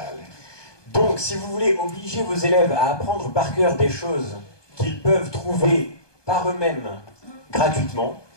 Donc, si vous voulez obliger vos élèves à apprendre par cœur des choses qu'ils peuvent trouver par eux-mêmes gratuitement,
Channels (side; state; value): right; late; 1.2 ms